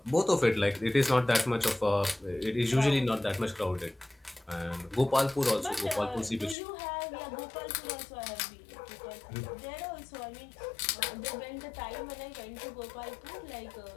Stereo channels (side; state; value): right; drops out; at 6.6 s